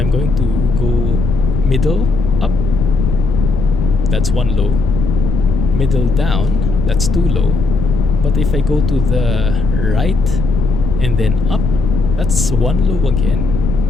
going to go middle up, that's one low. Middle down, that's two low. But if I go to the right and then up, that's one low again.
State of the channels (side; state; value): left; noise; rumble, 2 dB below the sound